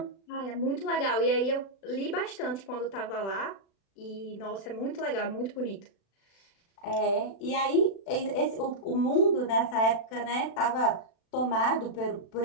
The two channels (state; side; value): late; right; 36 ms